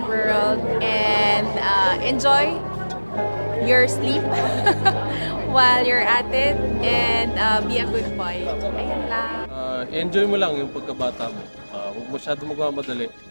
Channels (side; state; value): both; inverted; correlation -1.00